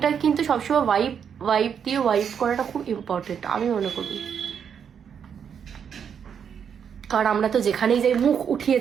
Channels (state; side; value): quieter; left; 7.6 dB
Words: কিন্তু সবসময় ওয়াইপ ওয়াইপ দিয়ে ওয়াইপ করাটা খুব ইম্পর্টেন্ট আমি মনে করি। কারণ আমরা তো যেখানেই যাই মুখ উঠিয়ে